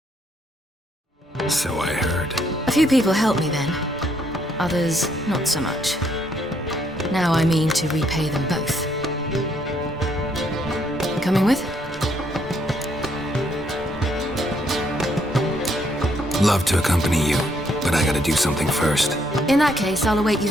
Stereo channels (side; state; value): both; normal; correlation 0.71